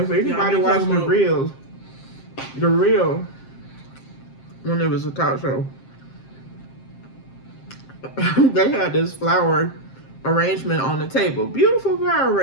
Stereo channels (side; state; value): right; late; 7.6 ms